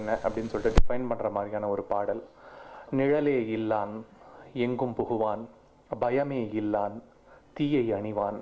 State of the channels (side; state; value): both; identical; correlation 1.00